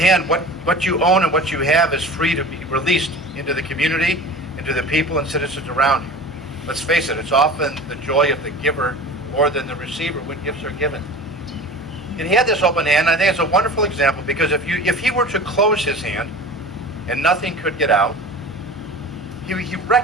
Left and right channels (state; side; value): normal; both; correlation 0.37